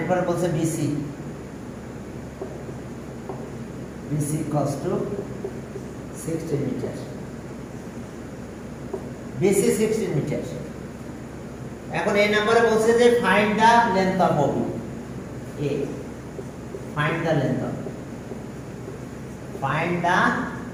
বলছে BC equals to 16 metre. BC 16 metre. এখন এই নম্বরে বলছে যে find the length of OB। Find the length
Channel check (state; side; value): identical; both; correlation 1.00